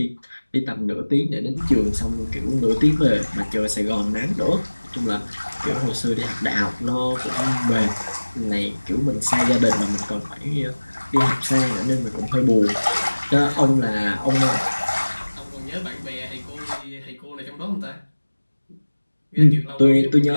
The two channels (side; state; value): both; inverted; correlation -1.00